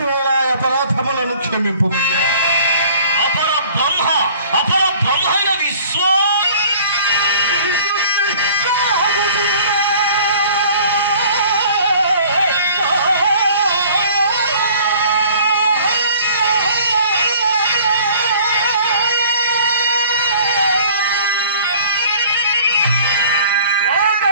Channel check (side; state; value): both; inverted; correlation -0.51